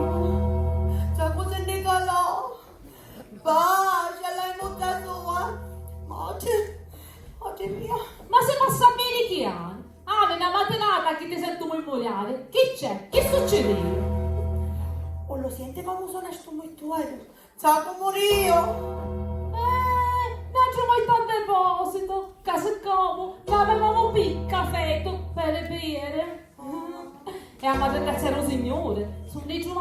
Sa cosa ne calò? Bacia, l'hai buttato oggi mia. Ma se passa bene che anni? Ah, una mattinata che ti sento memoriale. Che c'è? Che succede? O lo siente come suona sto mutuario? Sa come io? Non c'è mai tanto deposito. Casa come, avevamo un caffè per bere. E a madre c'era un signore. Su ne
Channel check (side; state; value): both; identical; correlation 1.00